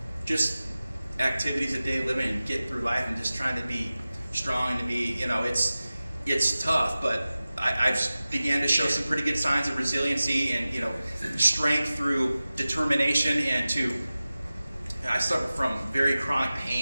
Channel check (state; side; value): inverted; both; correlation -0.97